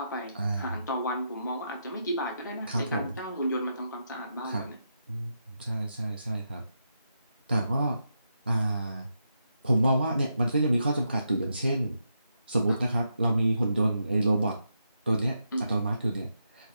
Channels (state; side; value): inverted; both; correlation -0.83